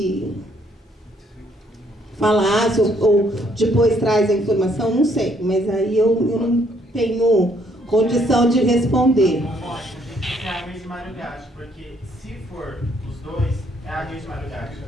falasse ou depois traz a informação, não sei, mas aí eu não tenho condição de responder. É a mesma Mário Gatti, porque se for os dois, é a mesma Mário Gatti,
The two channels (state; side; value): normal; both; correlation 0.68